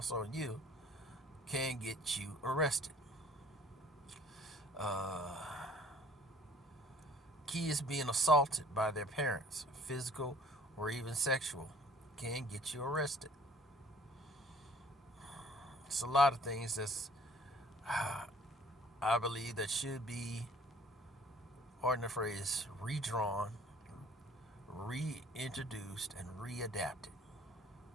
on you, can get you arrested. Kids being assaulted by their parents, physical or even sexual, can get you arrested. It's a lot of things that's, I believe, that should be, pardon the phrase, redrawn, reintroduced, and readapted.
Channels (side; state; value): both; normal; correlation 0.53